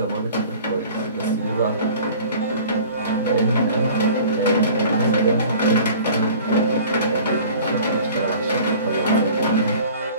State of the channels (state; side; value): inverted; both; correlation -0.45